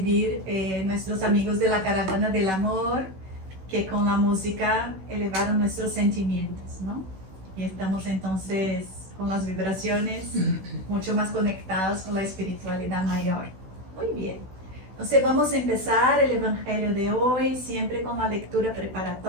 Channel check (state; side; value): late; left; 16 ms